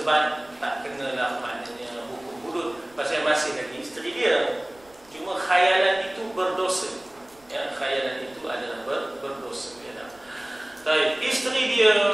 tak kenalah maknanya hukum hudud pasal masih lagi isteri dia. Cuma khayalan itu berdosa. Ya, khayalan itu adalah berdosa. Ya, baik, isteri dia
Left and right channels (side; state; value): right; noise; rumble, 30 dB below the sound